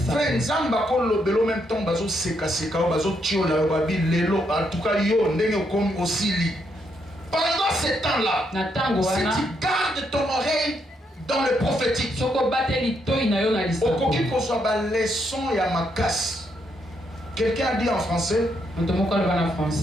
Pendant ces temps-là, si tu gardes ton oreille dans le prophétique, quelqu'un dit en français,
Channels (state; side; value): normal; both; correlation 0.77